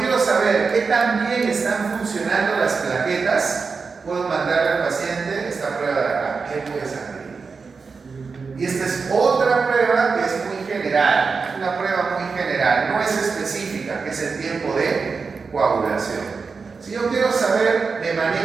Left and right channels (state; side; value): quieter; left; 4.9 dB